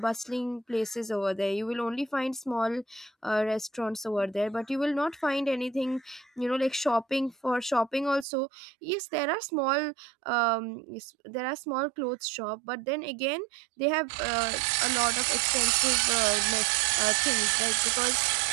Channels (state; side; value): drops out; left; at 8.2 s